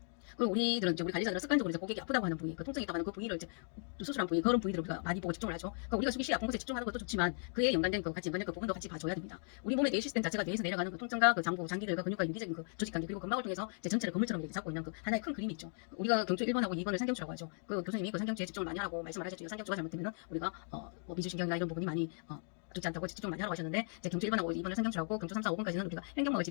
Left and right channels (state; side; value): silent; right; 53 dB below the other